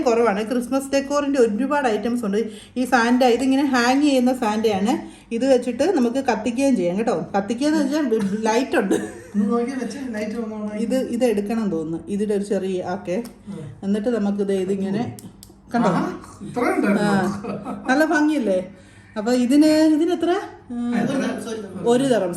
കുറവാണ്. ക്രിസ്മസ് ഡെക്കോറിൻ്റെ ഒരുപാട് ഐറ്റംസ് ഉണ്ട്. ഈ സാൻഡ, ഇതിങ്ങനെ ഹാങ് ചെയ്യുന്ന സാൻഡയാണ്. ഇത് വെച്ചിട്ട് നമുക്ക് കത്തിക്കുകയും ചെയ്യാം കേട്ടോ. കത്തിക്കുകയെന്ന് വെച്ചാൽ ലൈറ്റ് ഉണ്ട്. ഇത് എടുക്കണം തോന്നുന്നു, ഇതിൻ്റെ ഒരു ചെറിയ ഓക്കെ. എന്നിട്ട് നമുക്കിത് ഇതിങ്ങനെ കണ്ടോ, നല്ല ഭംഗിയല്ലേ. അപ്പൊ ഇതിനെത്ര? 1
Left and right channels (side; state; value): both; identical; correlation 1.00